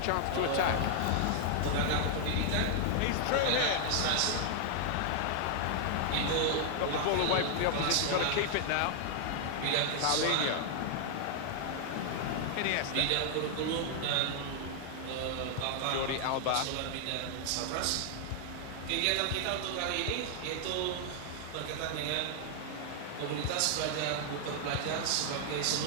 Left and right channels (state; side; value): different; both; correlation 0.00